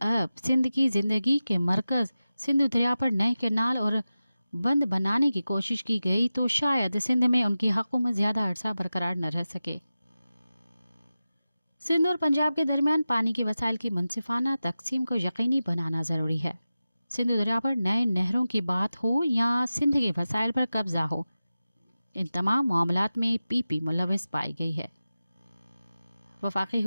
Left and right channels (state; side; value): inverted; both; correlation -0.94